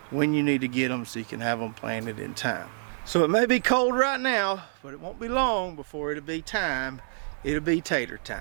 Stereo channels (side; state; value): left; silent; 60 dB below the other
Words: when you need to get them so you can have them planted in time. So it may be cold right now, but it won't be long before it'll be time. It'll be tater